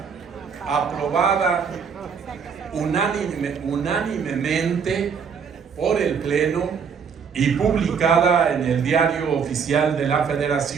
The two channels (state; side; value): quieter; left; 6.4 dB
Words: aprobada unánimemente por el Pleno y publicada en el Diario Oficial de la